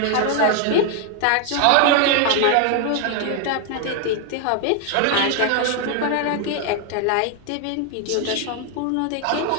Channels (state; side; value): different; both; correlation 0.00